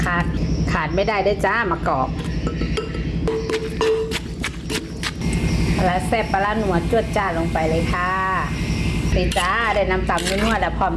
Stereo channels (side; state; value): both; identical; correlation 1.00